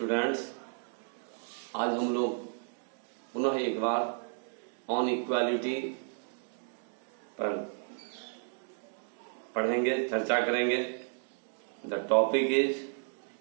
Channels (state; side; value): silent; left; 56 dB below the other